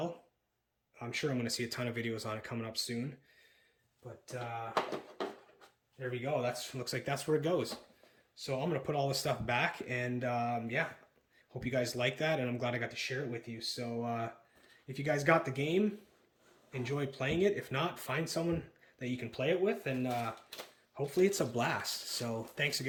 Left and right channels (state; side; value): identical; both; correlation 1.00